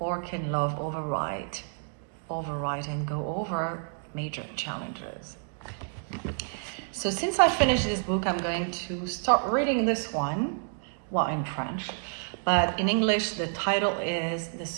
can love override and go over major challenges. So since I finished this book, I'm going to start reading this one, well, in French, but in English the title is The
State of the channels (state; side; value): silent; left; 58 dB below the other